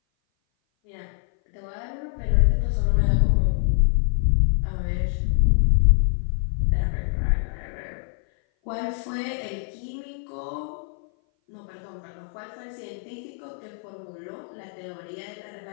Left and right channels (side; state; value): right; silent; 58 dB below the other